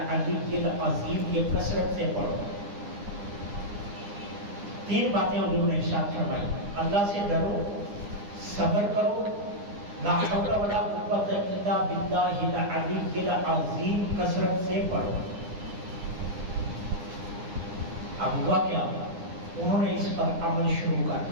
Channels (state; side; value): late; left; 9.8 ms